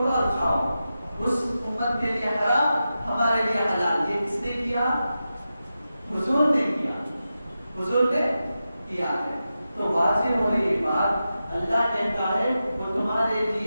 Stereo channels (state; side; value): inverted; both; correlation -0.91